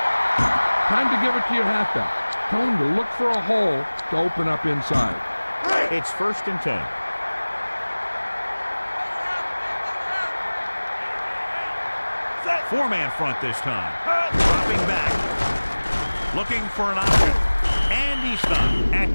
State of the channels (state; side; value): inverted; both; correlation -1.00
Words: Time to give it to your halfback. Tell him to look for a hole to open up inside. It's 1st and 10. Four-man front this time. Dropping back. Looking for an option. And he's stopped at